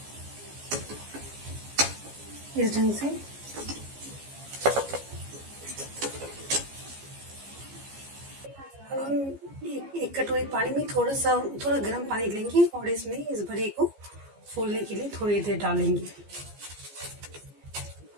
इस ढंग से अब हम एक कटोरी पानी में थोड़ा गर्म पानी लेंगे और इसमें इस बड़े को फूलने के लिए थोड़ी देर डालेंगे।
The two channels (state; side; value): late; left; 15 ms